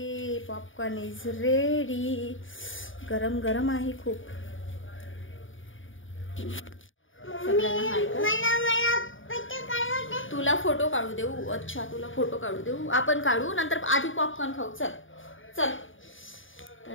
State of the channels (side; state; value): right; late; 0.57 ms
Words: पॉपकॉर्न इज रेडी. गरम गरम आहे खूप. तुला फोटो काढू देऊ? अच्छा, तुला फोटो काढू देऊ. आपण काढू, नंतर आधी पॉपकॉर्न खाऊ. चल चल.